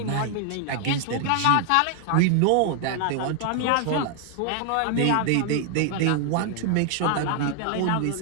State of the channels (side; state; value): both; different; correlation 0.00